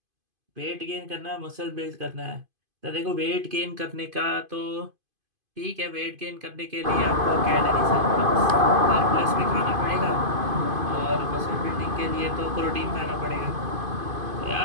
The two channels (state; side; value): late; left; 2.5 ms